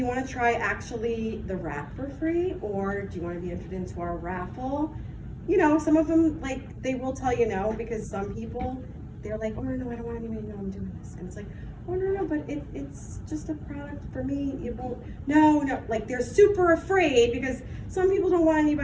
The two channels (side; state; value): both; identical; correlation 1.00